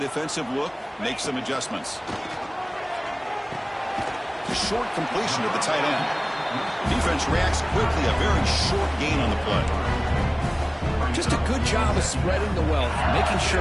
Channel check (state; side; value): identical; both; correlation 1.00